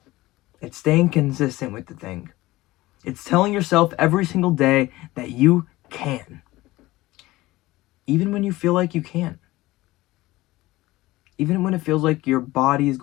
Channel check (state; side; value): quieter; right; 18.6 dB